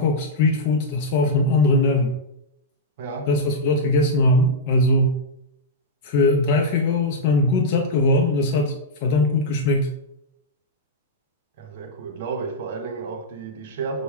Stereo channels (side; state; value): both; normal; correlation -0.07